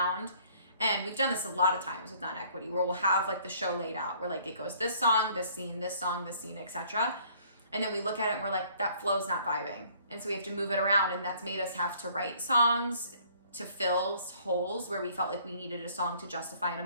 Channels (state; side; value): inverted; both; correlation -0.59